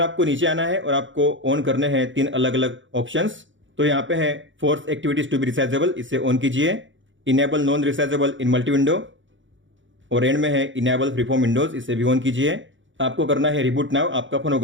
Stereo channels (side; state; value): left; late; 0.55 ms